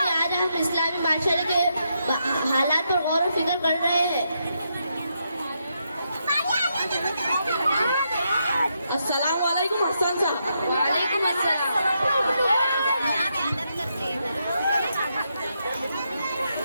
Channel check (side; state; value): both; inverted; correlation -0.81